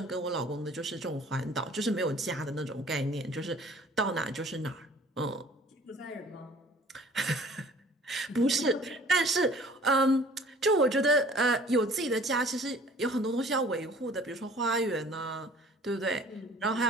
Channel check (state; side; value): normal; both; correlation 0.51